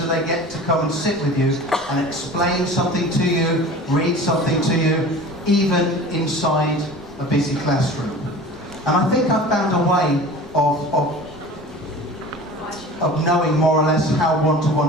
they get to come and sit with you and explain something to you, read something to you, even inside a busy classroom? And I think I've found a way of knowing more or less how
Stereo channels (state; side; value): normal; both; correlation 0.39